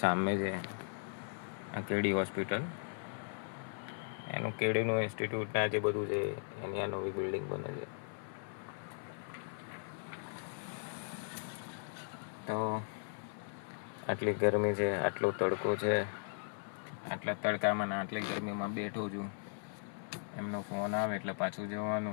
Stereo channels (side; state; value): right; silent; 53 dB below the other